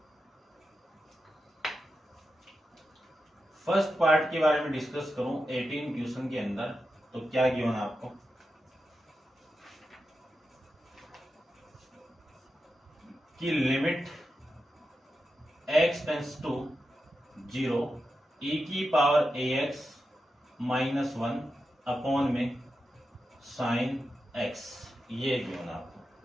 फर्स्ट पार्ट के बारे में डिस्कस करूं 18 क्वेश्चन के अंदर, तो क्या गिवन आपको, कि limit x tends to 0 e की पावर ax माइनस 1 अपॉन में साइन x, ये गिवन आपको।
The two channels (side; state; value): both; normal; correlation 0.89